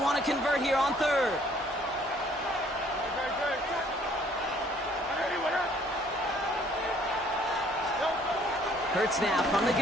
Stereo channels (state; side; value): normal; both; correlation 0.60